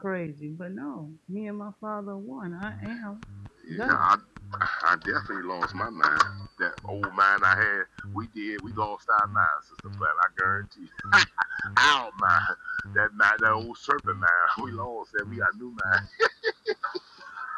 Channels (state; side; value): identical; both; correlation 1.00